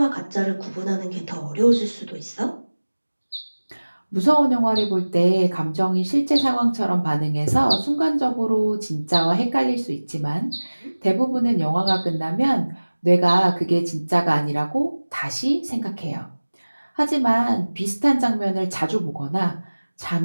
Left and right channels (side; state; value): both; inverted; correlation -1.00